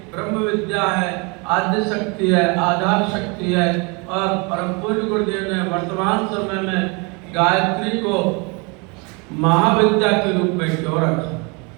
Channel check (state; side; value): quieter; left; 30.6 dB